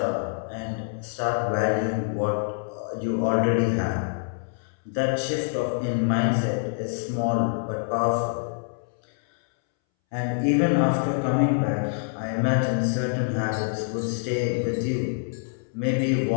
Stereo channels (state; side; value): silent; right; 61 dB below the other